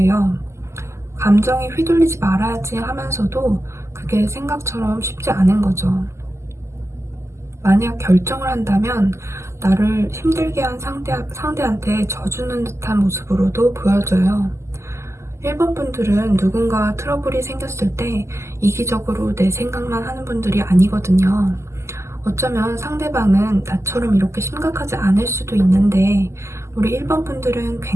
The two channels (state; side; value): late; left; 0.13 ms